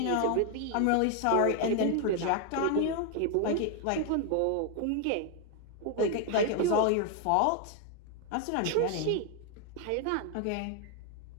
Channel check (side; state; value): both; different; correlation 0.01